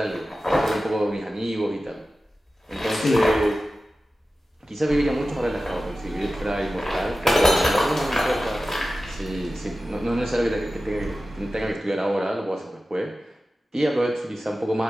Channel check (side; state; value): both; normal; correlation 0.95